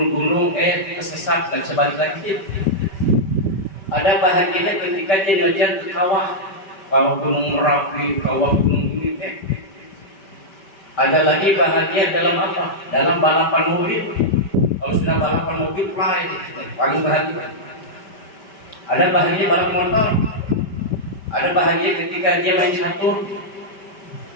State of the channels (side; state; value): right; late; 5.1 ms